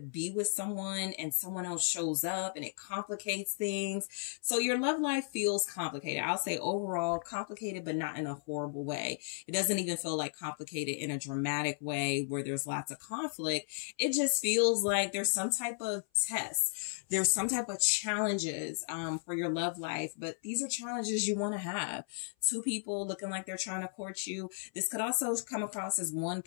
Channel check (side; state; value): right; silent; 55 dB below the other